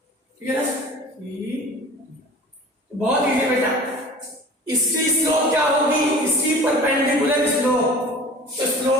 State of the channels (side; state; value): both; normal; correlation 0.41